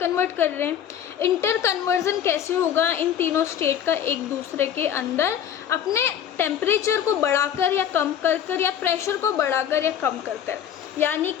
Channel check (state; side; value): quieter; right; 9.4 dB